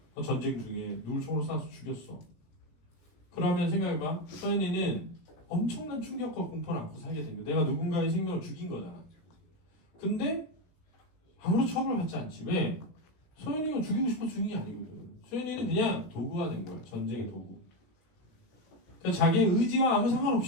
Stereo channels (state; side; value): late; right; 17 ms